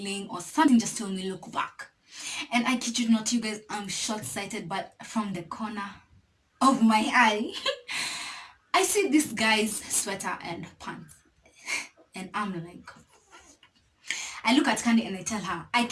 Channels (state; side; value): identical; both; correlation 1.00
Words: or something just told me look back. And I kid you not, you guys, I'm short-sighted, but from the corner of my eye, I see this guy's sweater and pants. And I'm like, I look at Candy and I tell her, I